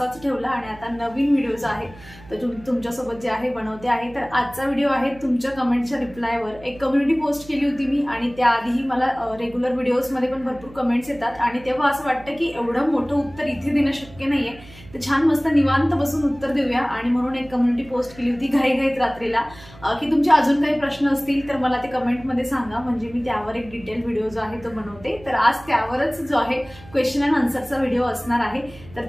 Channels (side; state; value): right; noise; hum, 21 dB below the sound